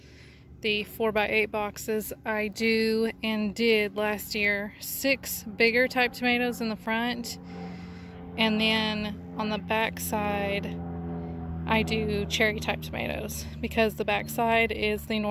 The 4x8 boxes I do and did last year. 6 bigger type tomatoes in the front, and then on the back side I do cherry type tomatoes because the back side is the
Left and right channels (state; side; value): identical; both; correlation 1.00